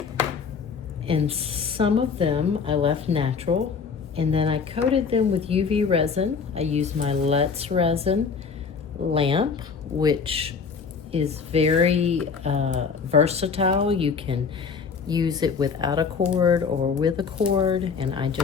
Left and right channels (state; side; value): quieter; right; 5.7 dB